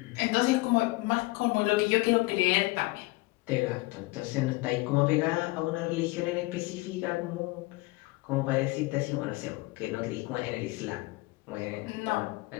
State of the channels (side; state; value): right; quieter; 22.5 dB